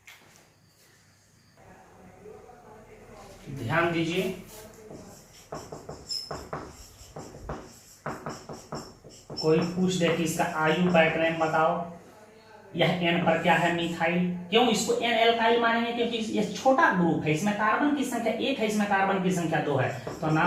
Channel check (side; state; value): both; identical; correlation 1.00